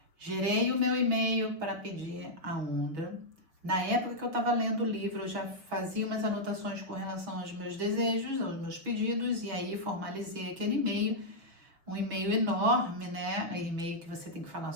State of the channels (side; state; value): left; late; 6.2 ms